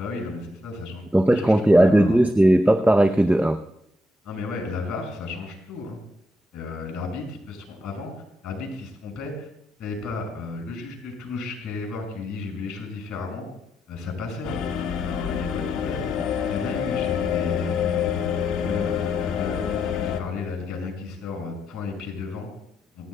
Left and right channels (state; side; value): normal; both; correlation 0.81